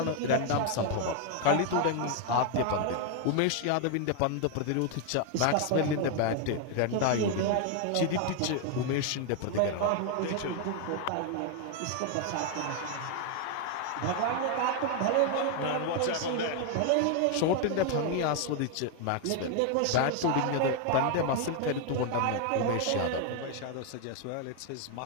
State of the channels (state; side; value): different; both; correlation 0.01